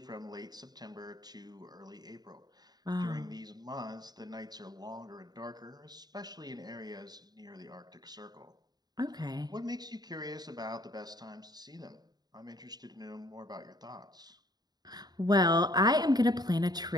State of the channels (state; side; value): late; left; 0.20 ms